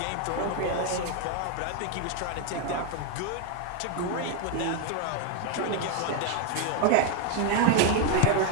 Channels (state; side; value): different; both; correlation 0.01